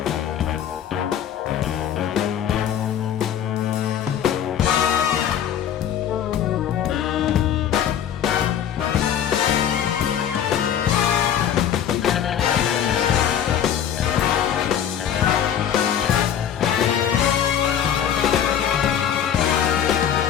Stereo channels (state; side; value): quieter; right; 9.4 dB